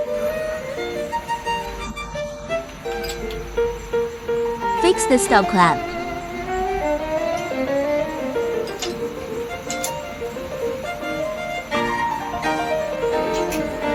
Fix the stop clamp.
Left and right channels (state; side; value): identical; both; correlation 1.00